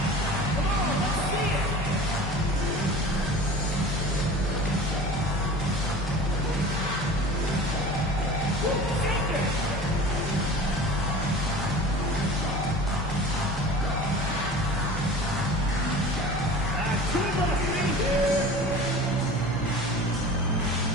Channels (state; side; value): normal; both; correlation 0.39